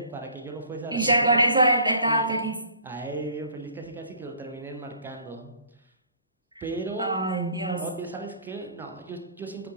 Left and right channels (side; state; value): both; inverted; correlation -0.52